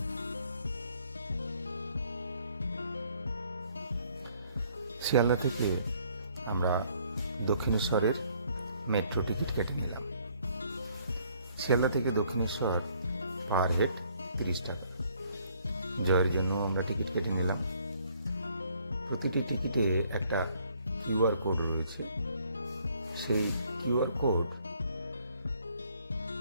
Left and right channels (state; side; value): inverted; both; correlation -0.64